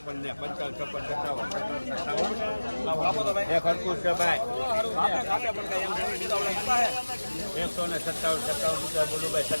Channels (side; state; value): both; inverted; correlation -1.00